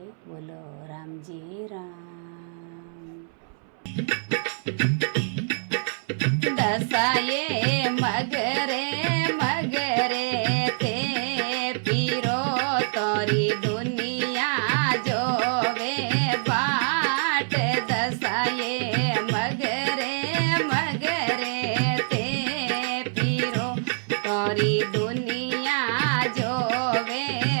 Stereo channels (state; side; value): silent; left; 60 dB below the other